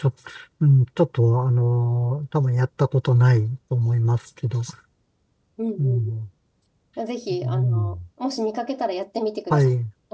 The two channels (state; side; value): identical; both; correlation 1.00